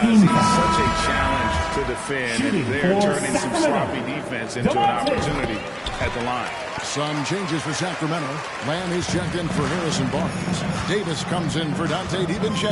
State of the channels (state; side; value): identical; both; correlation 1.00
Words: he's foul. such a challenge to defend, Shooting and they're for turning some sloppy defense into an opportunity at the line. Some changes for Sacramento. Lamb is checked in for Harrison Barnes. Davis comes in for Dante